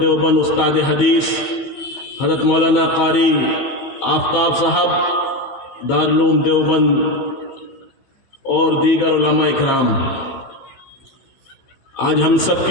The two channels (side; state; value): right; late; 15 ms